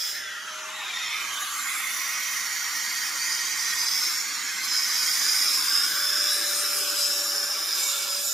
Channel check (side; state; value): both; normal; correlation 0.82